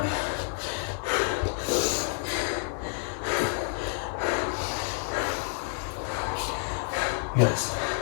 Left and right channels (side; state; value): right; silent; 59 dB below the other